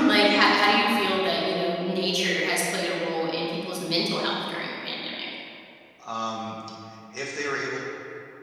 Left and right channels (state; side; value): identical; both; correlation 1.00